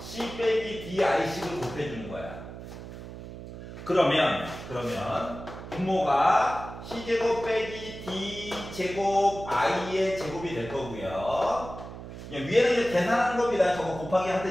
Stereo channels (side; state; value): right; noise; hum, 12 dB below the sound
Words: c 빼기 di식을 곱해주는 거야. 그러면 분모가 c제곱 빼기 d제곱 i의 제곱이 될 거고요. 위에는 이제 계산하는 겁니다. 저거 곱하기